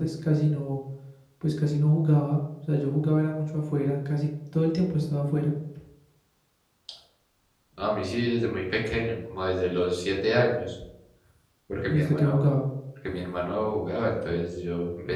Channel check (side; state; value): both; identical; correlation 1.00